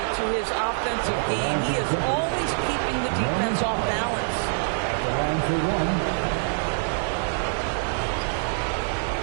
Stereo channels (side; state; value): left; silent; digital silence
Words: to his offensive game. He is always keeping the defense off balance. The line for one.